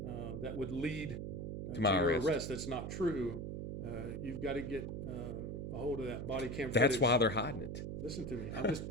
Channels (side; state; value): right; noise; hum, 5 dB below the sound